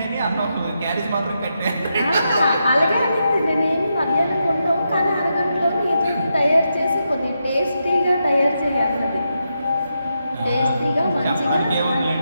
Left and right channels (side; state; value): both; inverted; correlation -0.84